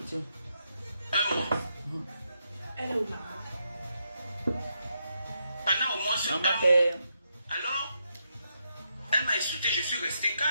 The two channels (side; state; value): both; inverted; correlation -0.81